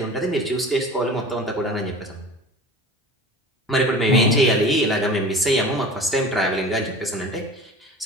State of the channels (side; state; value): both; normal; correlation 0.38